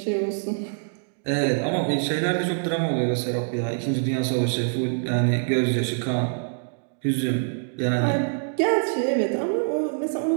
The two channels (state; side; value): silent; left; digital silence